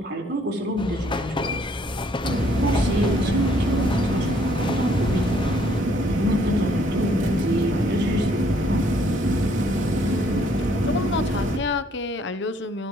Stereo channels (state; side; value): normal; both; correlation 0.65